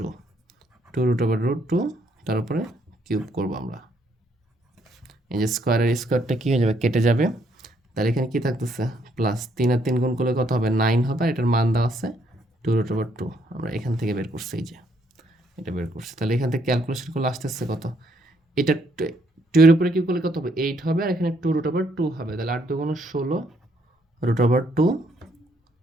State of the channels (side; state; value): both; normal; correlation 0.71